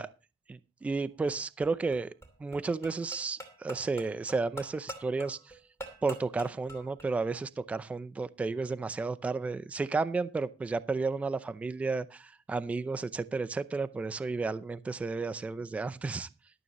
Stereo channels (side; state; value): left; quieter; 3.5 dB